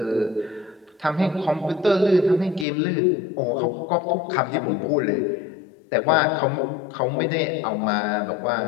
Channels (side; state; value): right; drops out; at 2.7 s